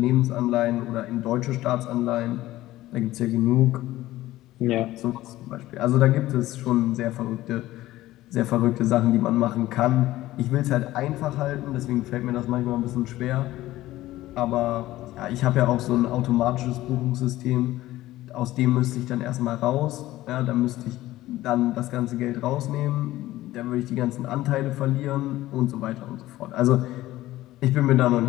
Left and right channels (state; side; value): quieter; right; 16.0 dB